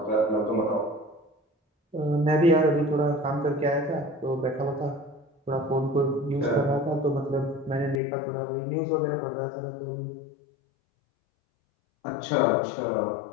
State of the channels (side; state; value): right; drops out; at 8.0 s